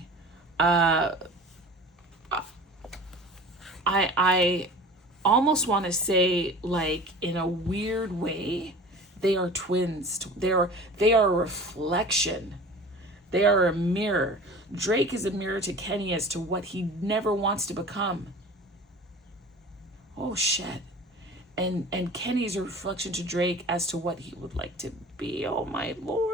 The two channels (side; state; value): both; normal; correlation 0.40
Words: I almost want to say, like, in a weird way, they are twins. They are a reflection. They are a mirror. Drake is a mirror to Kenny as to what he never wants to become. Oh, shit. And Kenny's a reflection to Drake as to what he would like to be. Oh, my